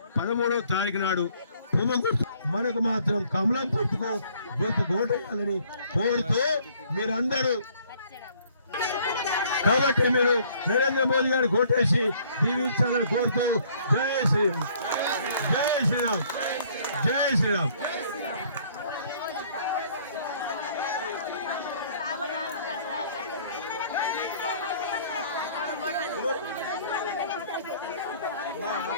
13వ తారీఖు నాడు మనకు మాత్రం కమలం గుర్తుకు ఓటేయాలని కోరుతూ మీరందరూ, కాబట్టి మీరు నరేంద్ర మోదీ గారికి ఓటేసి దీవించాలని కోరుతూ జై శ్రీరామ్, జై శ్రీరామ్, జై శ్రీరామ్.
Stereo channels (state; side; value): inverted; both; correlation -0.60